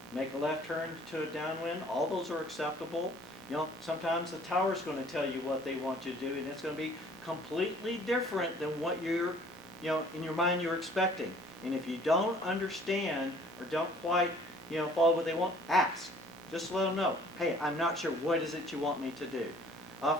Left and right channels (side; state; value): both; normal; correlation 0.55